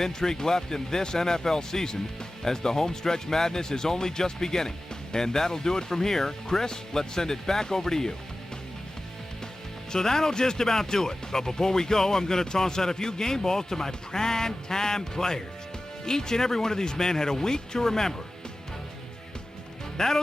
left in this NFL season, as the homestretch madness is only just beginning. And that'll do it from here. Chris, let's send it back over to you. So that'll just about do it. But before we go, I'm going to toss out a few game balls to my prime-time players. Each and every one of these men had a week to remember.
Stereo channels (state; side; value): normal; both; correlation 0.96